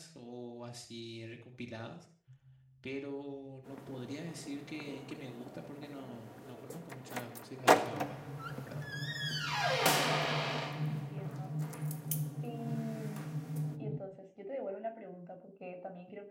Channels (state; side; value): identical; both; correlation 1.00